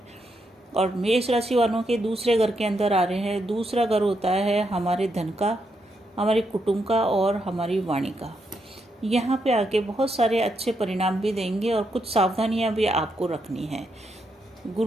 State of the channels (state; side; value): normal; both; correlation 0.80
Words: और मेष राशि वालों के दूसरे घर के अंदर आ रहे हैं। दूसरा घर होता है हमारे धन का, हमारे कुटुंब का और हमारी वाणी का। यहाँ पे आके बहुत सारे अच्छे परिणाम भी देंगे और कुछ सावधानियाँ भी आपको रखनी है।